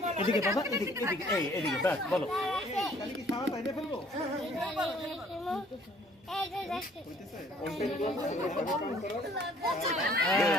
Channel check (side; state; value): both; normal; correlation 0.58